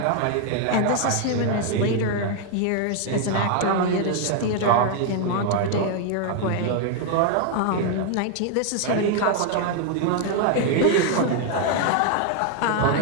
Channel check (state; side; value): different; both; correlation 0.00